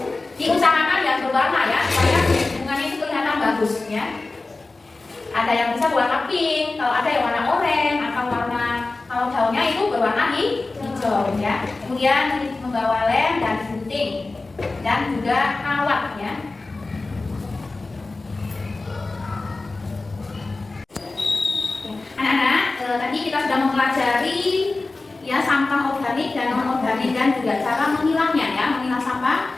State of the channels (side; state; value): right; quieter; 3.4 dB